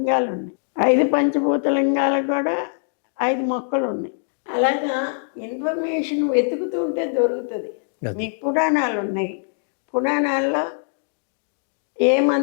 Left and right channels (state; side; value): silent; right; digital silence